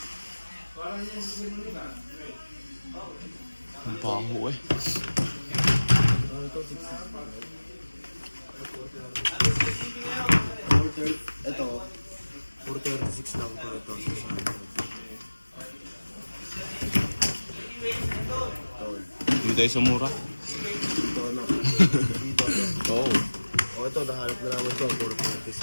Ang baho eh. Ano ito? 600. Ito, 436 lang po ito. 600. Hindi tayo sa mura. Dito na. Dito na. Oo. O ito, nahanap na namin ito.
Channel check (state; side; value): inverted; both; correlation -1.00